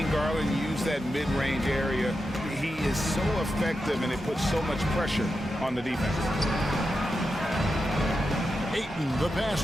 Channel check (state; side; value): normal; both; correlation 0.89